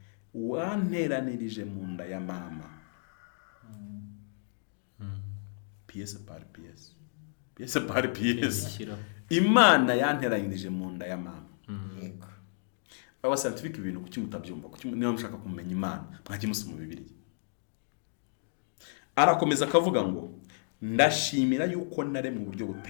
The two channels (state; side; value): silent; right; digital silence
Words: wanteranirije mu nda ya mama pièce par pièce Pièce par pièce. Ishyiraho. Imana yanteranyirije mu nda ya mama. yego Aba scientific ibintu kuki mutabyumva, kuki niba mushaka kumenya Imana mwajye musoma mu Bibiliya. Arakomeza akavuga ngo ndashimira yuko nare mu buryo